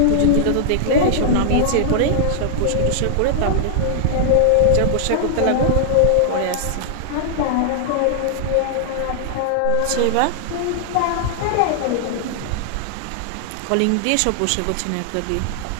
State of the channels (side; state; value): both; different; correlation -0.01